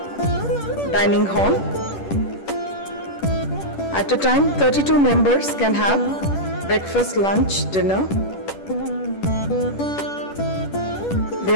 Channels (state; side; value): late; right; 10 ms